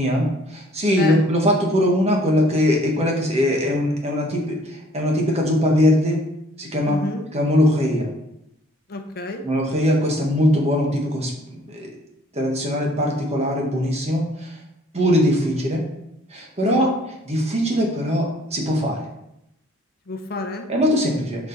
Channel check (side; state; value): both; normal; correlation 0.58